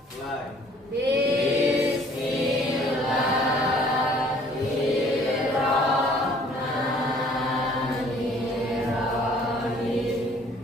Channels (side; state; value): both; normal; correlation 0.56